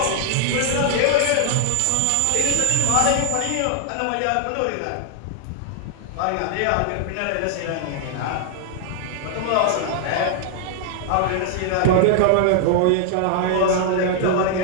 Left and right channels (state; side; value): different; both; correlation 0.00